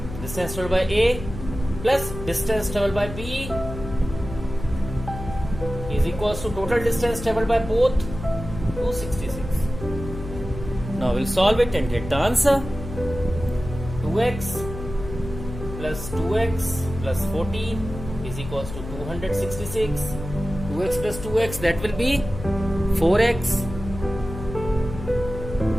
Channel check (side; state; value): left; noise; hum, 10 dB below the sound